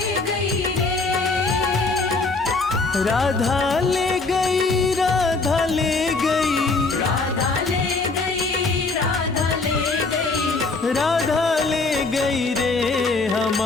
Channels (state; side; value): quieter; right; 3.7 dB